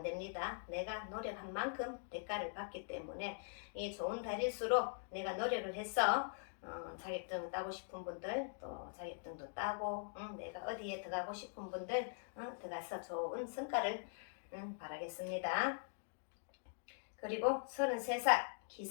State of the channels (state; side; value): silent; right; digital silence